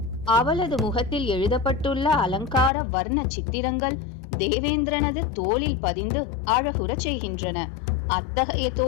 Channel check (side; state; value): right; drops out; at 2.7 s